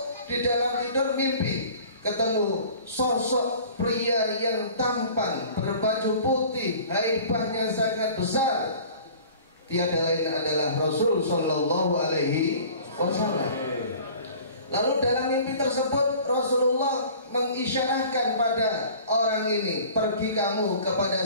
di dalam tidur mimpi ketemu sosok pria yang tampan, berbaju putih, haibahnya sangat besar. Tiada lain adalah Rasul Sallallahu Alaihi Wasallam. Lalu dalam mimpi tersebut Rasulullah mengisyarahkan pada orang ini, pergi kamu kepada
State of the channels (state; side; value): inverted; both; correlation -0.46